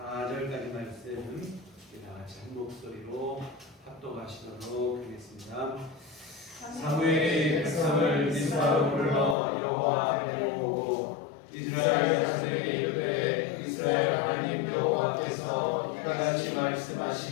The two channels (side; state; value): right; drops out; at 9.3 s